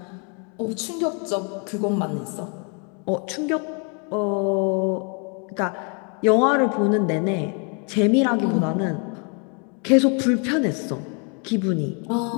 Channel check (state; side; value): quieter; right; 36.9 dB